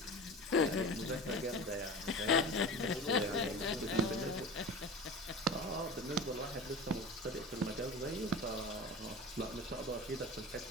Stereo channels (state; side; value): normal; both; correlation 0.33